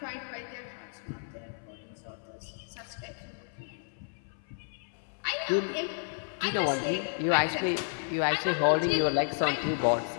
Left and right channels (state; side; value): silent; right; 57 dB below the other